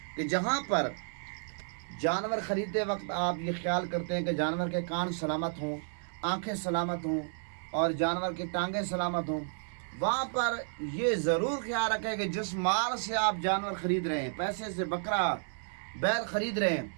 कि जहाँ पर जानवर ख़रीदते वक्त आप ये ख्याल करते हैं कि जानवर के कान सलामत हों, आँखें सलामत हों और जानवर की टांगें सलामत हों, वहाँ पर ये ज़रूर ख्याल रखें कि जिस माल से आप जानवर ख़रीद रहे हैं, पैसे से बकरा बैल ख़रीद रहे हैं,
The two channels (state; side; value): silent; left; digital silence